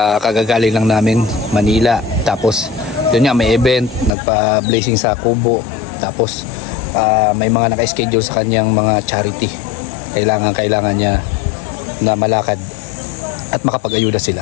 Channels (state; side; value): drops out; right; at 4.1 s